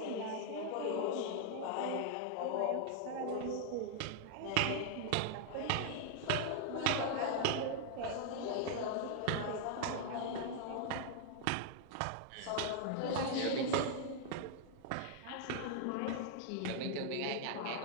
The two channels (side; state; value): both; different; correlation 0.00